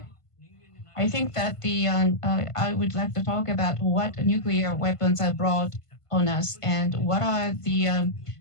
I think that I would like to talk about what nuclear weapons are brought on us and what are the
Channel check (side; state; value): right; late; 1.5 ms